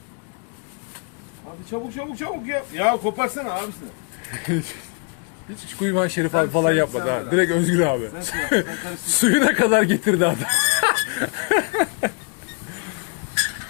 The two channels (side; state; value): right; quieter; 34.9 dB